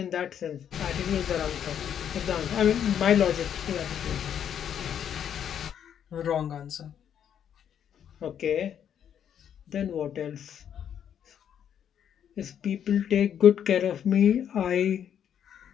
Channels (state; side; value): quieter; right; 9.1 dB